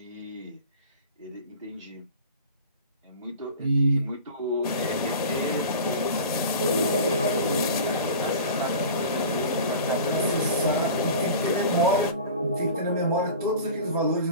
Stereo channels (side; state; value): both; inverted; correlation -0.37